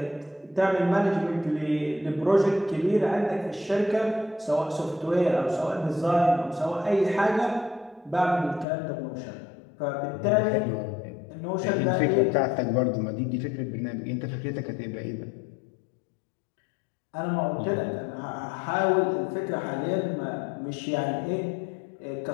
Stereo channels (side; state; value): right; drops out; at 8.7 s